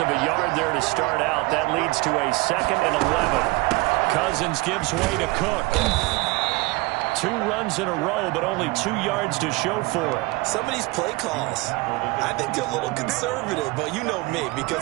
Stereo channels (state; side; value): quieter; left; 23.5 dB